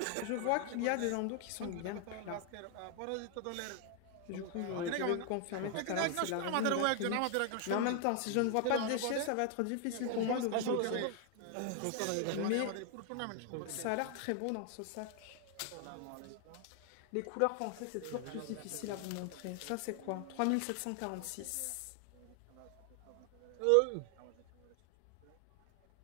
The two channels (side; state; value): both; different; correlation 0.00